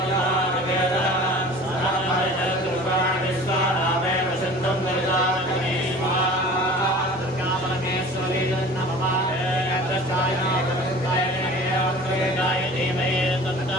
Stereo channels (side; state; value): right; noise; hum, 27 dB below the sound